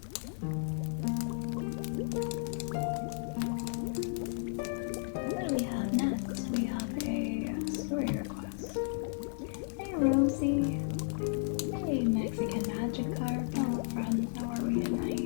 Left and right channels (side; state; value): right; silent; digital silence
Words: What do we have next? We have a story request. Hey Rosie. Hey Mexican Magic Carp. Hello friends, how are we